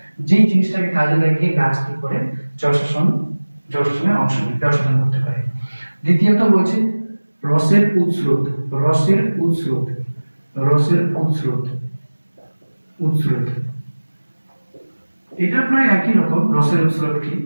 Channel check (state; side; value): inverted; both; correlation -1.00